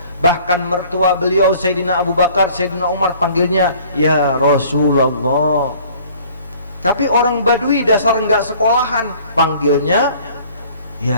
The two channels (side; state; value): both; inverted; correlation -0.53